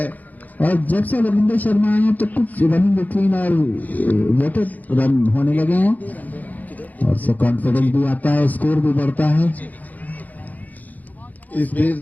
और जब से रविंद्र शर्मा आए तो कुछ रनिंग बिटवीन और वेटेड रन होने लगे हैं, और से कॉन्फिडेंस भी आता है, स्कोर भी बढ़ता है। इस बीच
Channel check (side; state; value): right; late; 0.080 ms